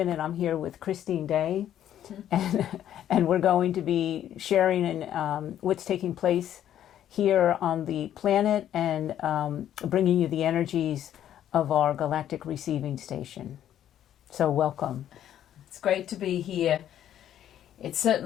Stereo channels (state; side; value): quieter; right; 11.0 dB